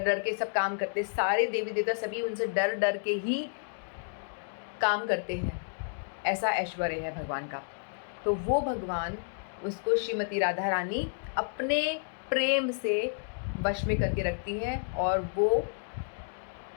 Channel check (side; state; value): right; silent; digital silence